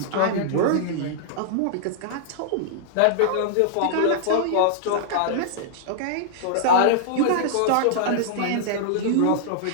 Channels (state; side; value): different; both; correlation -0.01